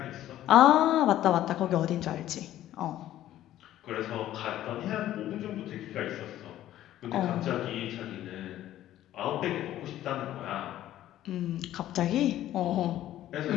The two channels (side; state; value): right; quieter; 13.1 dB